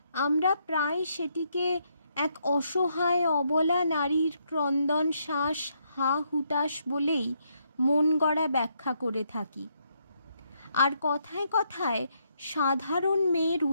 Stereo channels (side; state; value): both; inverted; correlation -0.75